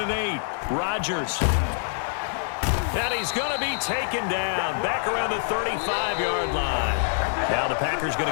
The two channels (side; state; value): right; silent; 58 dB below the other